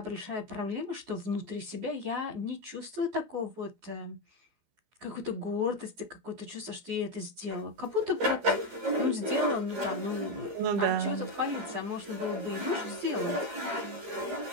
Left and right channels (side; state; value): left; late; 15 ms